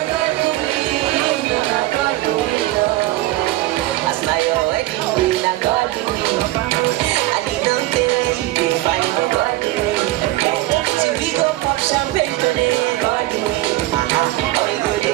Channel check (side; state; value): left; quieter; 17.2 dB